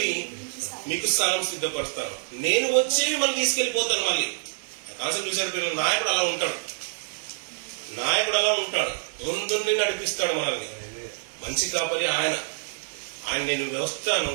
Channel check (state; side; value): silent; left; digital silence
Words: మీకు స్థలం సిద్ధపరుస్తాను, నేను వచ్చి మనం తీసుకెళ్లిపోతాను. మళ్ళీ కాన్సెప్ట్ చూసారు పిల్లలు, నాయకుడు అలా ఉంటాడు, నాయకుడు అలా ఉంటాడు, ముందుండి నడిపిస్తాడు మనల్ని. మంచి కాపరి ఆయన. నేను వస్తాను,